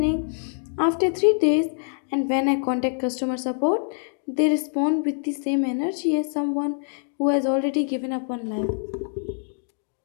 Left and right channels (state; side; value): silent; right; 62 dB below the other